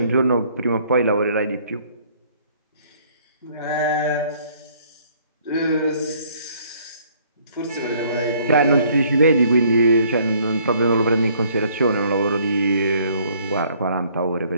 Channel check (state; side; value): inverted; both; correlation -0.61